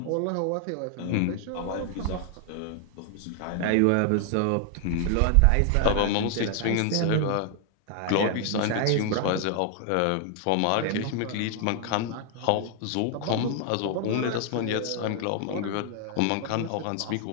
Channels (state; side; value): different; both; correlation 0.00